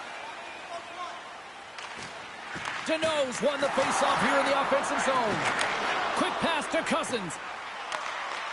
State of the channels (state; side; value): identical; both; correlation 1.00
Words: Deneau's won the face-off here in the offensive zone. Quick pass to Cousins.